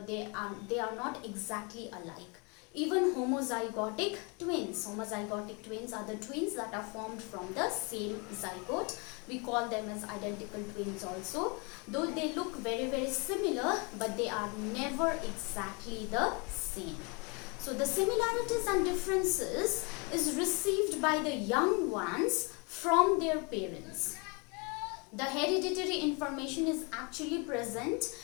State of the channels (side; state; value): right; quieter; 31.7 dB